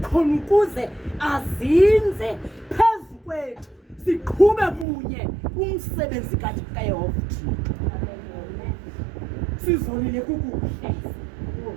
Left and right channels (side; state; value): left; drops out; at 4.9 s